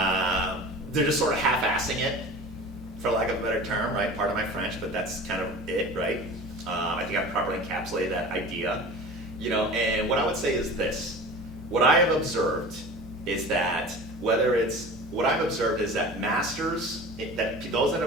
They're just sort of half-assing it, for lack of a better term, right? Pardon my French, but that's kind of it, right? I think I've properly encapsulated that idea. You know, and what I would say is this. What I have observed is that masters, that those that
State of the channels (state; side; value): normal; both; correlation 0.37